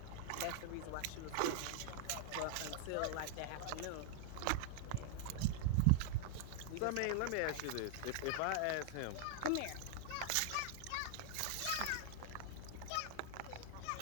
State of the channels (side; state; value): both; different; correlation 0.00